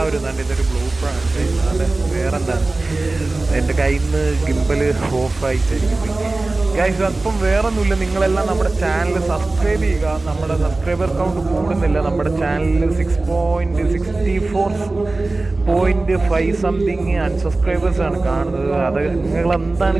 തന്നെ ഇതൊരു ബ്ലൂപ്പറാണ് വേറെന്താണ് എൻ്റെ കയ്യിൽ നിന്ന് ഗിംബൽ ഓഫായിട്ടായിരിക്കും ഗൈസ്. അപ്പം വേറൊന്നുമില്ല, നിങ്ങളെല്ലാം നമ്മുടെ ചാനൽ സബ്സ്ക്രൈബ് ചെയ്യുക. നമ്മുടെ സബ്സ്ക്രൈബർ കൗണ്ട് കൂടുന്നില്ല. നമ്മുടെ ചാനലിൽ 6.64.5 സംതിങ് അൺസബ്സ്ക്രൈബേഴ്സ് ആണ് കാണുന്നത്. അത് നിങ്ങളെന്താണ്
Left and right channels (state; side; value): quieter; left; 3.2 dB